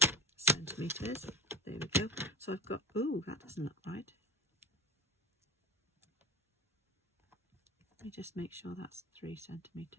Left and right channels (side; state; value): both; normal; correlation 0.26